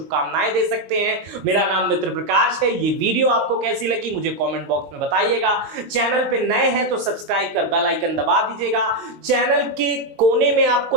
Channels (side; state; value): left; late; 22 ms